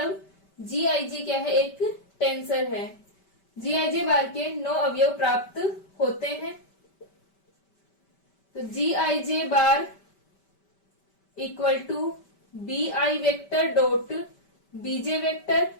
GIJ क्या है, एक टेंसर है। GIJ बार के 9 अवयव प्राप्त होते हैं। तो GIJ bar equal to BI vector dot BJ vector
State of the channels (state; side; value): late; right; 5.2 ms